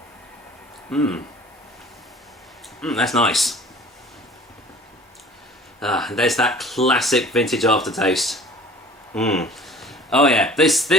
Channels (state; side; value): normal; both; correlation 0.47